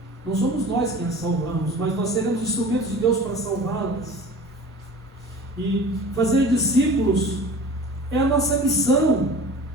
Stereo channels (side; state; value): both; normal; correlation 0.40